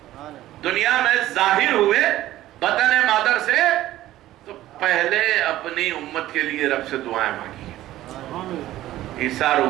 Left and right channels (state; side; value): quieter; left; 14.7 dB